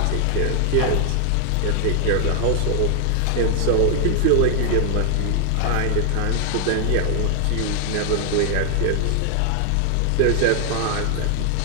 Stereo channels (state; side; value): different; both; correlation 0.00